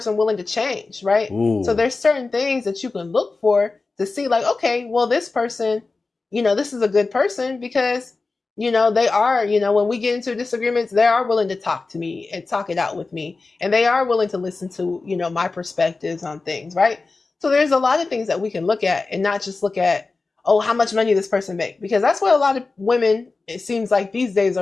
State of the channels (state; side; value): quieter; right; 3.8 dB